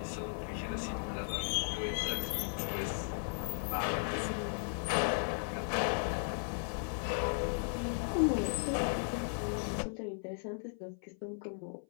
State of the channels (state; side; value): silent; right; 54 dB below the other